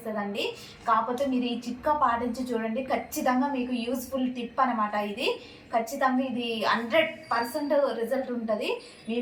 కాకపోతే మీరు ఈ చిట్కా పాటించి చూడండి. ఖచ్చితంగా మీకు యూస్ఫుల్ టిప్ అనమాట ఇది. ఖచ్చితంగా ఇది 100% రిజల్ట్ ఉంటుంది.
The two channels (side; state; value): both; identical; correlation 1.00